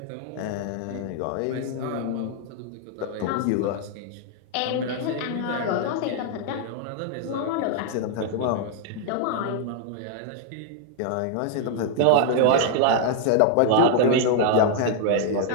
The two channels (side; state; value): both; different; correlation 0.00